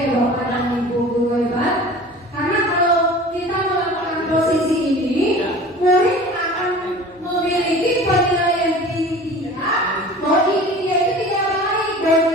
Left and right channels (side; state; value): both; normal; correlation 0.41